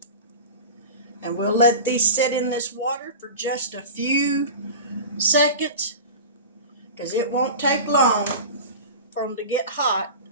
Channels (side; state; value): both; inverted; correlation -0.31